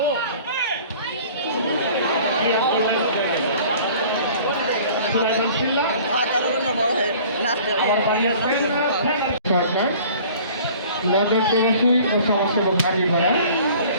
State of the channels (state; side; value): inverted; both; correlation -0.49